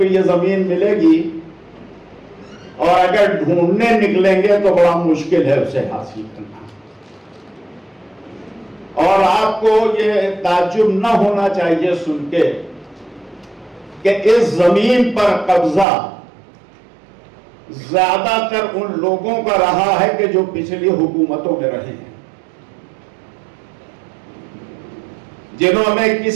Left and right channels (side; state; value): left; drops out; at 15.9 s